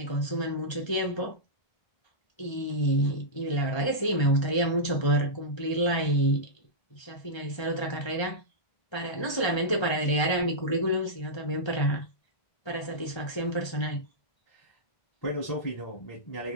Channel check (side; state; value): right; late; 1.3 ms